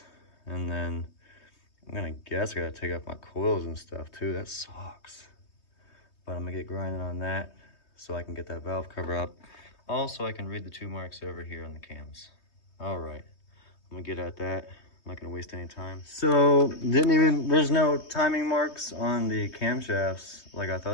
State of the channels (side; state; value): right; late; 3.2 ms